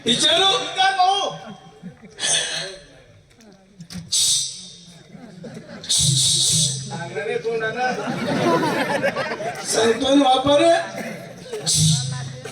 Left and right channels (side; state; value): both; identical; correlation 1.00